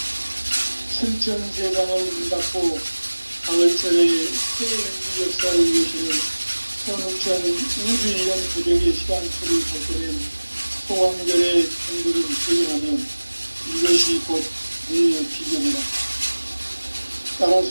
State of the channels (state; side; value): inverted; both; correlation -1.00